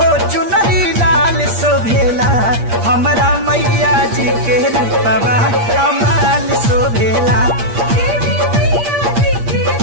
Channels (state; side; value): late; left; 8.6 ms